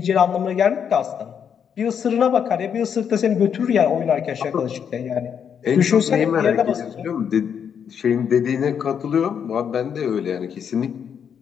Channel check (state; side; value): quieter; right; 7.7 dB